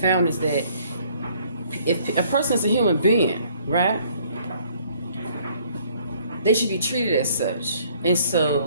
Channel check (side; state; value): both; inverted; correlation -0.60